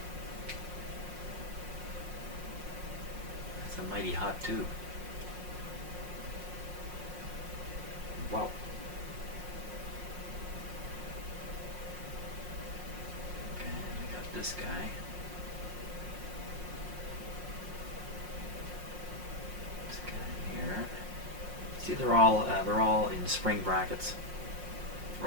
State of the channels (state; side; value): late; left; 5.6 ms